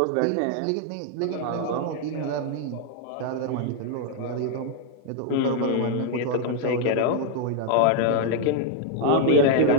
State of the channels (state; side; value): different; both; correlation 0.00